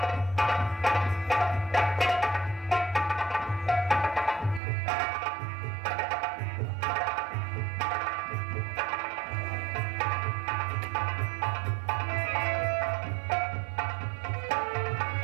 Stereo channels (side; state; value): left; drops out; at 4.6 s